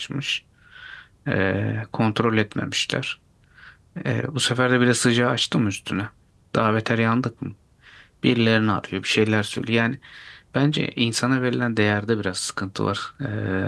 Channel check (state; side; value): identical; both; correlation 1.00